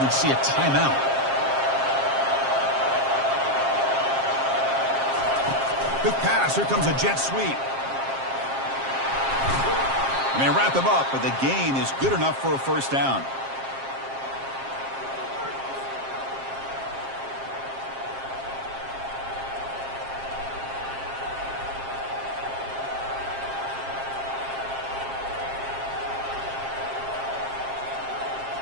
see a timeout. Quick pass. Here comes a jet sweep. And they wrap him up, but the gain is good enough for a first down.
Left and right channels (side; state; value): left; late; 7.5 ms